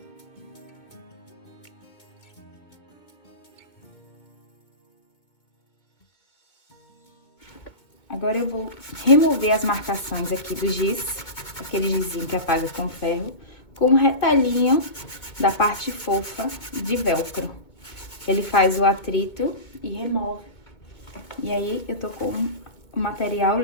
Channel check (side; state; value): right; late; 2.2 ms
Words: Agora, eu vou remover as marcações aqui do giz, aquele gizinho que apaga com ferro, com um retalhinho da parte fofa de velcro. Ele faz o atrito e remove. E aí, eu tô com o material